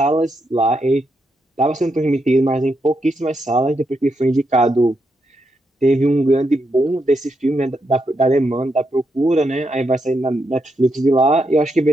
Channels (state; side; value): normal; both; correlation 0.81